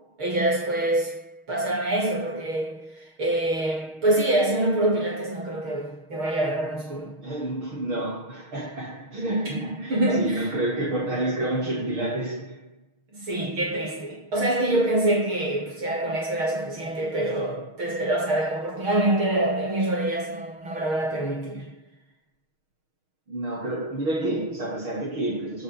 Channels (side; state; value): left; late; 6.4 ms